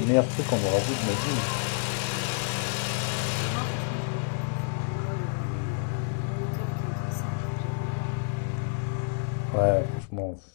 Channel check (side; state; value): right; silent; digital silence